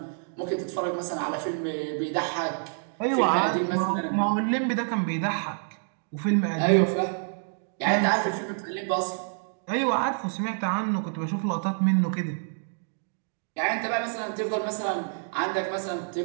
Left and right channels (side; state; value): left; silent; digital silence